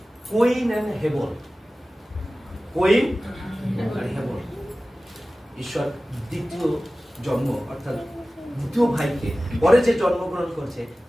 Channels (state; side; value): normal; both; correlation 0.96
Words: কোইন এন্ড হেবন, কোইন আর হেবন, ঈশ্বর দ্বিতীয় জন্ম অর্থাৎ দ্বিতীয় ভাইকে পরে যে জন্মগ্রহণ করেছে